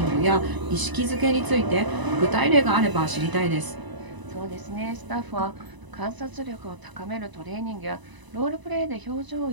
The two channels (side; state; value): left; late; 1.0 ms